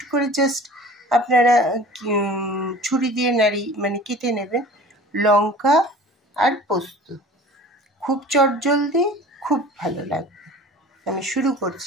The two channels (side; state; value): both; normal; correlation 0.43